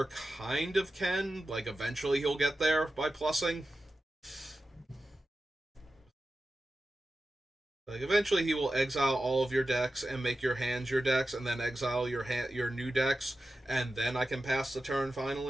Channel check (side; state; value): both; normal; correlation 0.93